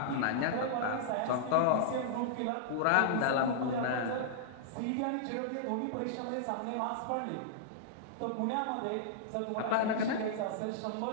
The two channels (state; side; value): different; both; correlation -0.02